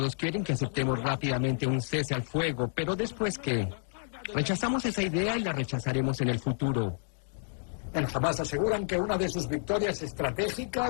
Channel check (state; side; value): silent; right; digital silence